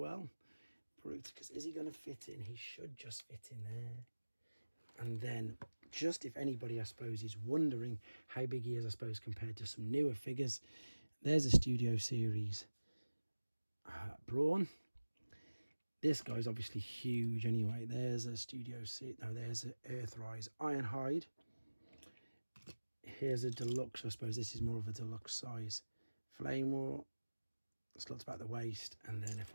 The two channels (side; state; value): both; inverted; correlation -1.00